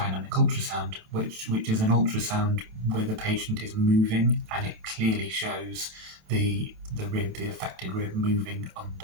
ultrasound, which is an ultrasound where the patient is moving and it clearly shows the rib, the affected rib, moving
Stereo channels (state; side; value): late; left; 27 ms